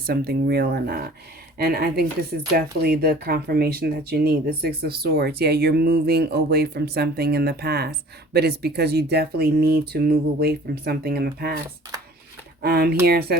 something real or not. And I think this is definitely the confirmation that you need. The Six of Swords. Yeah, you're moving away from something in the past, but it's because you definitely need to move away from something in the past. Here it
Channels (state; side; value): normal; both; correlation 0.48